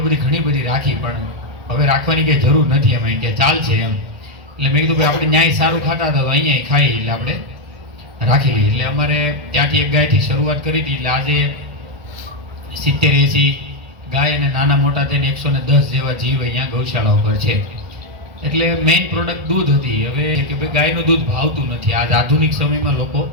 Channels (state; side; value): late; left; 1.7 ms